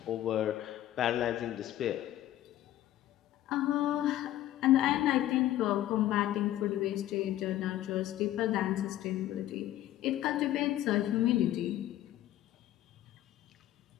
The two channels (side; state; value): right; quieter; 13.4 dB